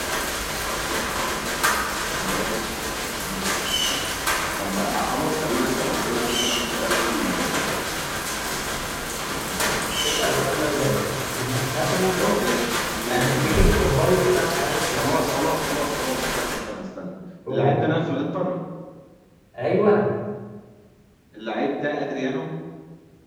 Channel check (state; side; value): identical; both; correlation 1.00